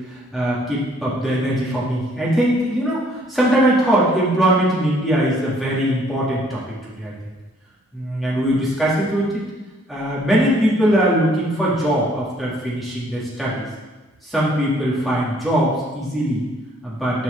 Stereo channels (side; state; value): both; normal; correlation 0.63